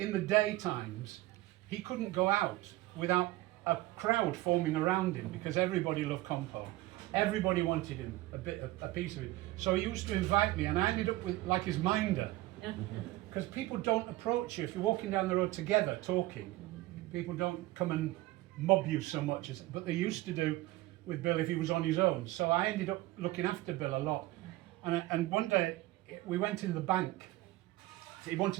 the daytimes, he couldn't go out without a crowd forming around him, because everybody loved Compo. Everybody wanted him, a piece of it. So he used to invite me, and I ended up with like his minder. Because people don't approach you if you're walking down the road together talking. People don't come and mob you so much, but they used to do with Bill if he was on his own. So I ended up looking after Bill a lot. And one day we went in the bank. He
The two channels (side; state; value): left; quieter; 17.9 dB